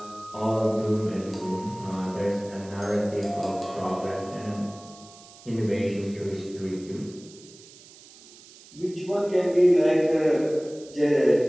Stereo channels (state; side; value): noise; right; hiss, 22 dB below the sound